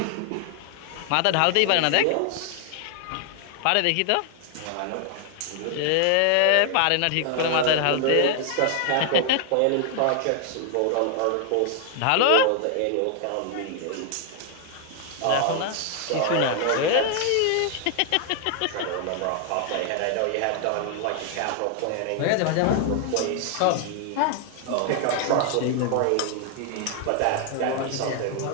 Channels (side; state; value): both; different; correlation 0.00